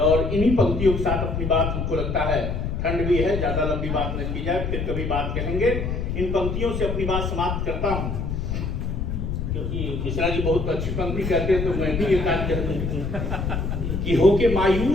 इन्हीं पंक्तियों के साथ अपनी बात, हमको लगता है ठंड भी है, ज्यादा लंबी बात न की जाए, फिर कभी बात कहेंगे। इन पंक्तियों से अपनी बात समाप्त करता हूं, क्योंकि मिश्रा जी बहुत अच्छी पंक्ति कहते हैं, तो मैं भी एक आध कह दूं कि होके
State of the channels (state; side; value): noise; left; rumble, 2 dB below the sound